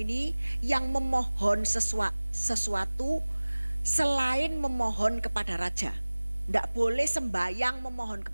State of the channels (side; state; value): both; inverted; correlation -1.00